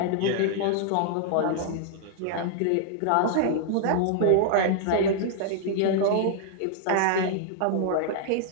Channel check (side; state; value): both; different; correlation -0.01